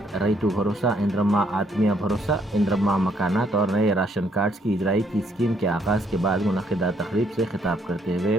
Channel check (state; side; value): normal; both; correlation 0.70